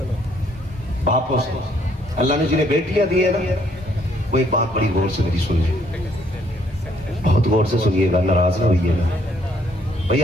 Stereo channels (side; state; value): both; normal; correlation 0.67